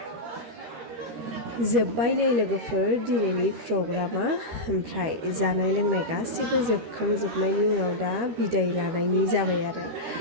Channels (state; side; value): late; left; 13 ms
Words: जोब्बाय नै लोगोफोर दिनैनि प्रग्रामा ओमफ्राय जानाय लोंनाय गासिबो जोबखांजोबनायनि उनाव दा बिदाय लानायनि जाबाय आरो